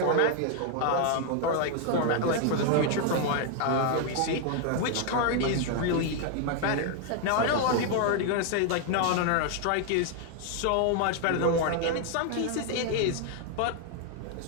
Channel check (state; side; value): different; both; correlation 0.00